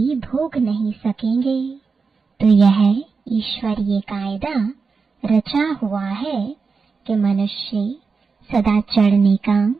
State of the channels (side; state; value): left; quieter; 4.9 dB